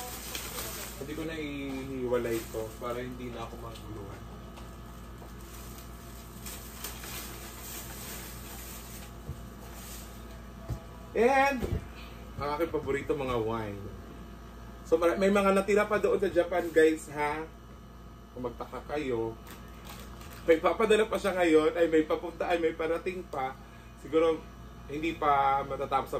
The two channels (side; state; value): both; identical; correlation 1.00